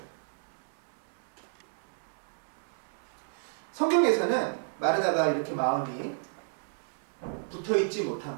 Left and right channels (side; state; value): left; silent; digital silence